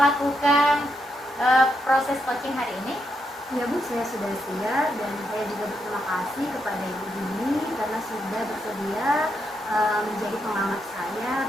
proses coaching hari ini? Ya Bu, saya sudah siap dan saya juga berterima kasih kepada Ibu Dini karena sudah bersedia menjadi pengamat saya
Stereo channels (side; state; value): both; normal; correlation 0.81